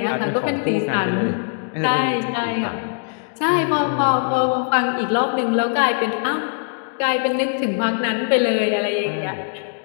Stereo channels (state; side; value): silent; right; 65 dB below the other